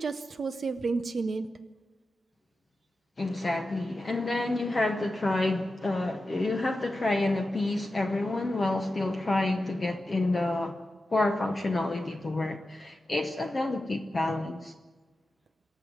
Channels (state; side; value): normal; both; correlation 0.92